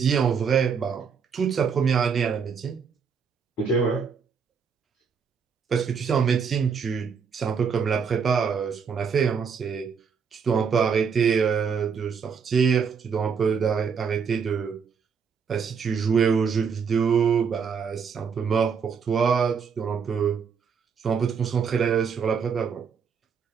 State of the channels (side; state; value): left; quieter; 6.3 dB